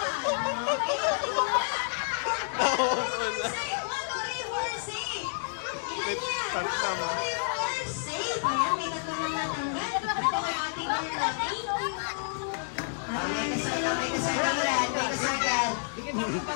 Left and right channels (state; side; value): silent; right; digital silence